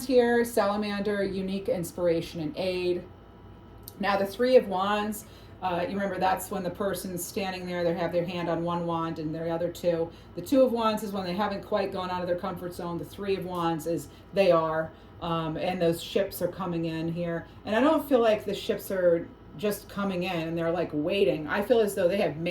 here, Salamander, unique inspiration and aid. Now the 3 of Wands, you remember that's when the person's standing there, they have their hand on one wand and their other 2. The 2 of Wands is when they haven't quite gone out of their comfort zone. The 3 of Wands is they are, and those ships are coming in here. And I don't feel like the ships are just coming in and they're like waiting. I feel as though they have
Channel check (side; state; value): both; identical; correlation 1.00